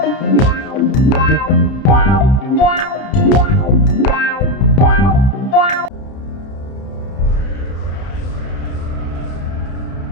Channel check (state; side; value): late; right; 31 ms